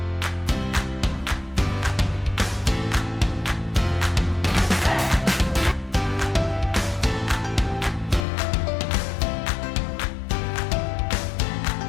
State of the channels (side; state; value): right; drops out; at 8.2 s